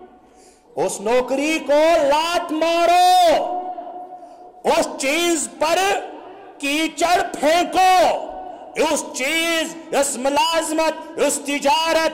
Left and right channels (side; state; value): both; identical; correlation 1.00